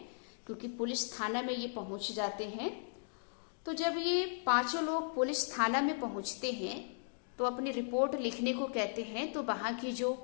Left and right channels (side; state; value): right; silent; digital silence